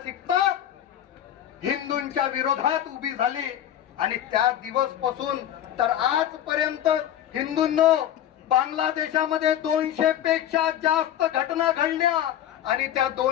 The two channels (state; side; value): quieter; right; 11.1 dB